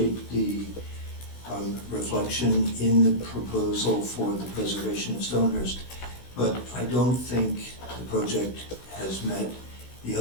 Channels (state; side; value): late; right; 16 ms